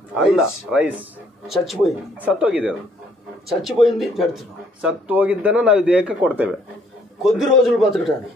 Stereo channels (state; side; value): normal; both; correlation 0.65